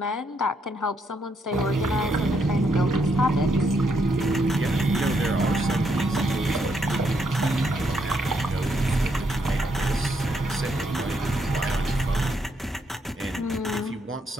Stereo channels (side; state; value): both; normal; correlation 0.76